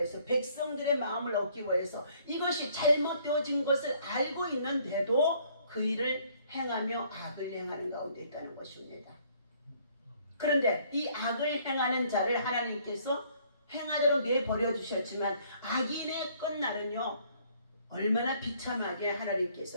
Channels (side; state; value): both; inverted; correlation -0.62